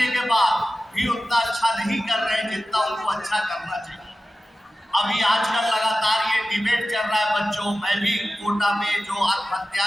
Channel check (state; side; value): normal; both; correlation 0.95